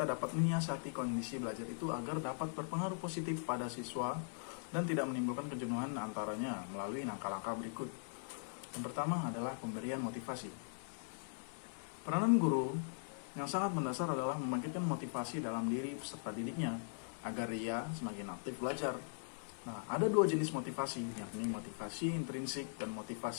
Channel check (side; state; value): right; silent; digital silence